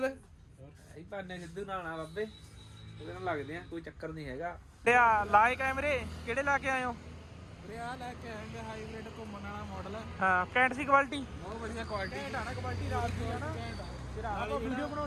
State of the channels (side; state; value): both; identical; correlation 1.00